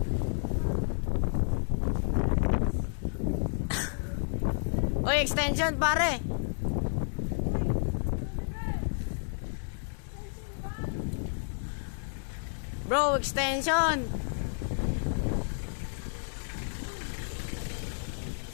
Oy, extension, pare. Bro, extension!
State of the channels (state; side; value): silent; right; digital silence